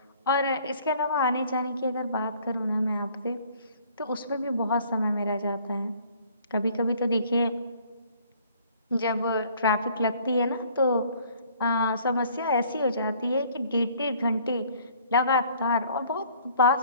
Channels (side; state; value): both; inverted; correlation -0.57